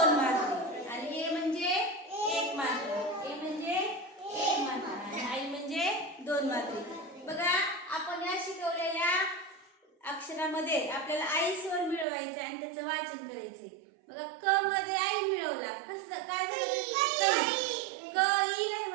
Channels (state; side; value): drops out; left; at 12.1 s